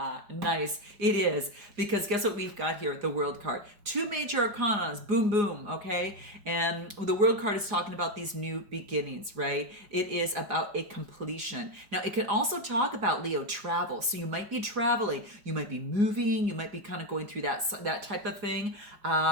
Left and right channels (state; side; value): late; left; 4.9 ms